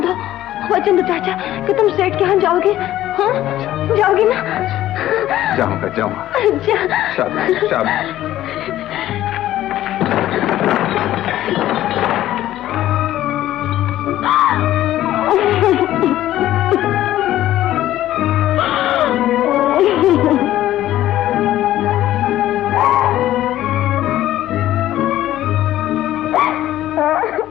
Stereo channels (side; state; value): right; quieter; 13.7 dB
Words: चाचा कि तुम सेठ के यहाँ जाओगे। हाँ जाओगे ना? जाऊंगा जाऊंगा। शाबाश शाबाश।